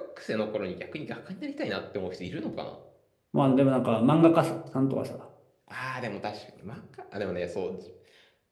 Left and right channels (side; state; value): both; identical; correlation 1.00